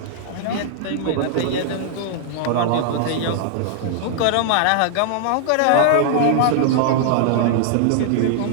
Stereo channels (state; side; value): different; both; correlation -0.01